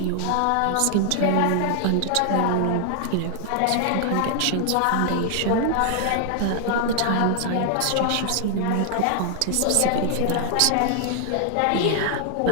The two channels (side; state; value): both; different; correlation 0.00